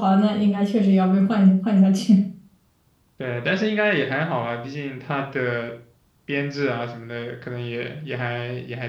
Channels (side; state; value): both; identical; correlation 1.00